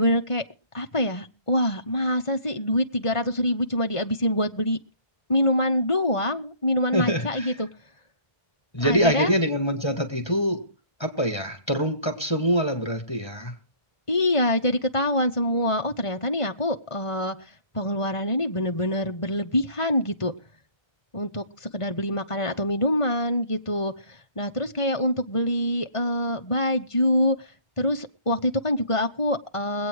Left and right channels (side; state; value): right; late; 1.5 ms